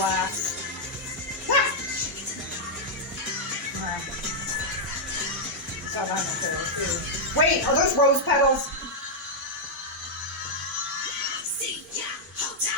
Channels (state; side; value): normal; both; correlation -0.04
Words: Saw that in the trailer too. Wait, are those rose petals?